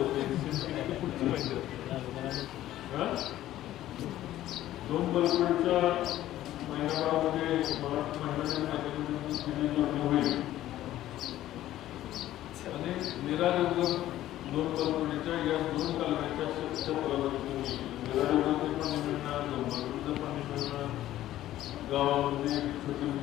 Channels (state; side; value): quieter; right; 13.8 dB